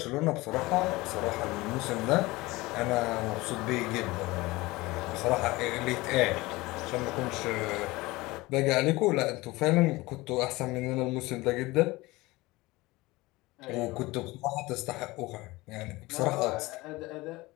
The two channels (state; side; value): quieter; right; 21.0 dB